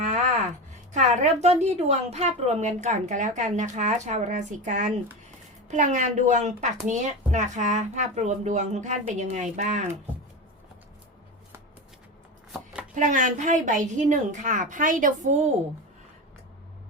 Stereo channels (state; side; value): normal; both; correlation 0.22